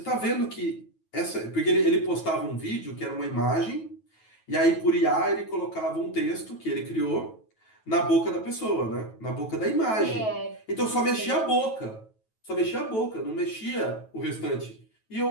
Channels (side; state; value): right; late; 9.2 ms